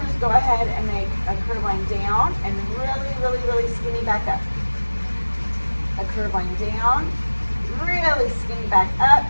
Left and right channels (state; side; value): inverted; both; correlation -1.00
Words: to go ahead and make a curve line down and really, really, really skinny back up. A curve line down, really skinny back